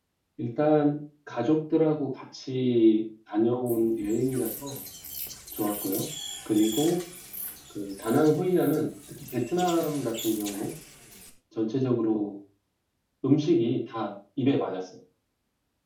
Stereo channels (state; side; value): identical; both; correlation 1.00